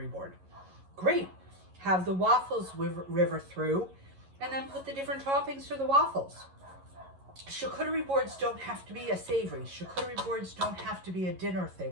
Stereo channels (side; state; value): left; late; 11 ms